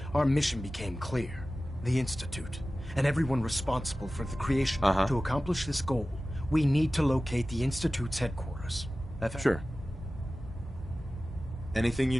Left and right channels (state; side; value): normal; both; correlation 0.96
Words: our mission became clear. The Institute, and everyone responsible for the creation. To accomplish this goal, we need to locate the Institute's headquarters. Sure. Anything you